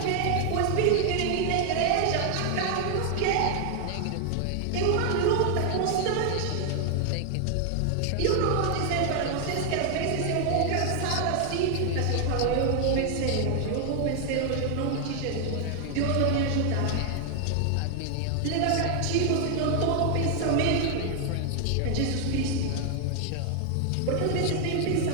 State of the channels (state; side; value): different; both; correlation 0.00